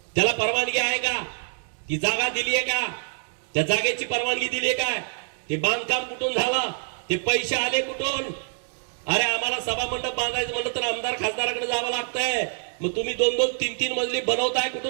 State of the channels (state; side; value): silent; left; digital silence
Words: त्याला परवानगी आहे का? ती जागा दिली आहे का? त्या जागेची परवानगी दिली आहे का? ते बांधकाम कुठून झालं? ते पैसे आले कुठून? अरे आम्हाला सभा मंडप बांधायचं म्हणलं तर आमदार खासदाराकडे जावं लागतंय। मग तुम्ही 2-2, 3-3 मजली बनवताय